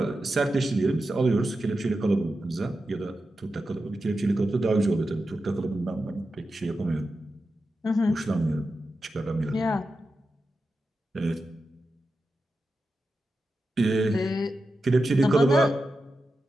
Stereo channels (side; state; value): both; normal; correlation 0.90